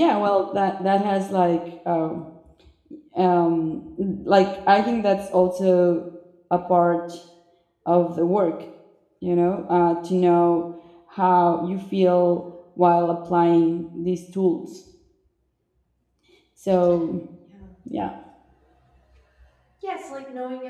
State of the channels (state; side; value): identical; both; correlation 1.00